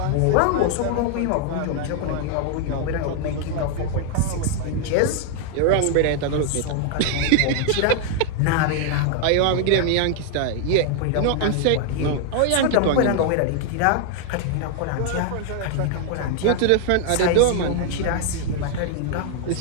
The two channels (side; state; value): both; different; correlation 0.00